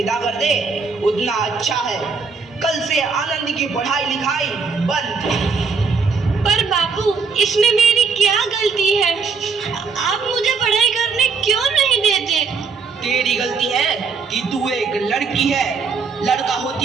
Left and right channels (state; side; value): quieter; left; 5.0 dB